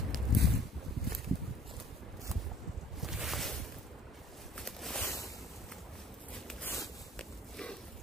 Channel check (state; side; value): normal; both; correlation 0.55